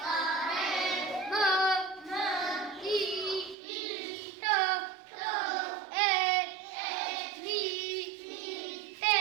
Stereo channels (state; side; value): drops out; left; at 3.6 s